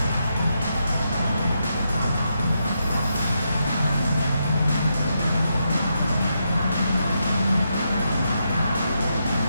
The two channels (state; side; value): inverted; both; correlation -0.83